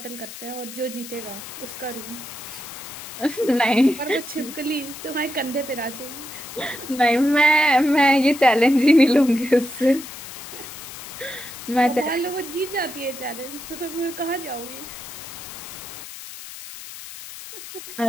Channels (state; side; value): noise; left; hiss, 12 dB below the sound